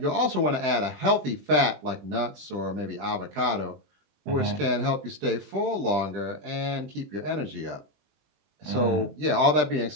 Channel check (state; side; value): late; left; 20 ms